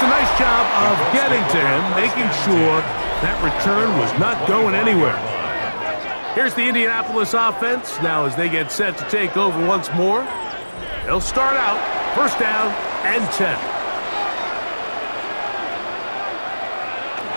a nice job of getting to him, making sure that return was not going anywhere. Here's the Indianapolis offense. Now as they get set to take over once more, they'll start out 1st down and 10.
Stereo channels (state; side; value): inverted; both; correlation -1.00